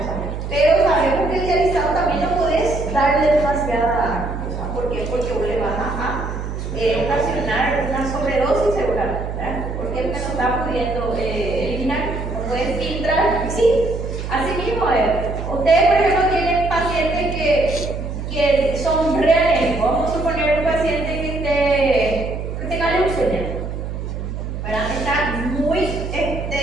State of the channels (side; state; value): right; noise; hum, 6 dB below the sound